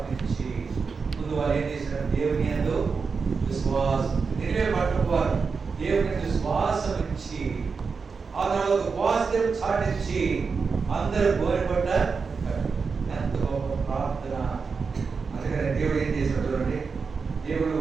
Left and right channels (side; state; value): left; quieter; 5.1 dB